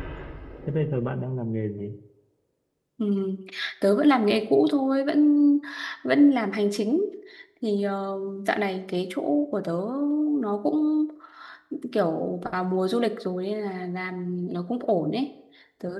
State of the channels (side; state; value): both; identical; correlation 1.00